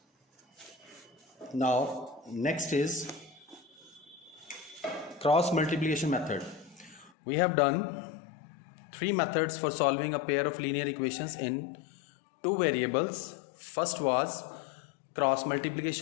Now, next is cross multiplication method. We have done three methods for solving a pair of linear equations in two variables. First was cross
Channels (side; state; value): right; drops out; at 7.1 s